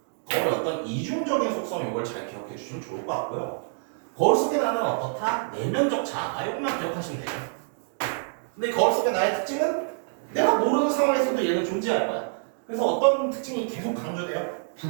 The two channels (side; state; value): left; silent; digital silence